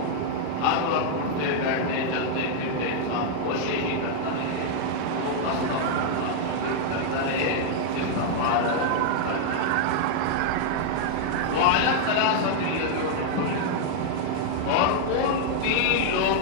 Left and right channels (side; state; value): both; different; correlation -0.01